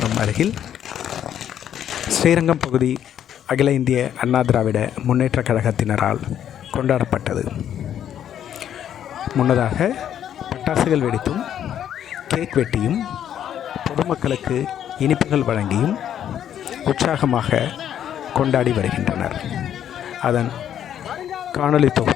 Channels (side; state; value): right; quieter; 10.0 dB